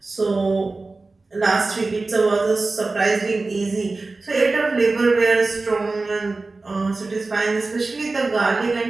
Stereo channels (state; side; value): quieter; left; 3.5 dB